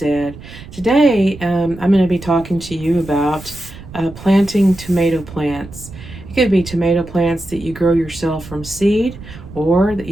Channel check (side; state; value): right; noise; rumble, 16 dB below the sound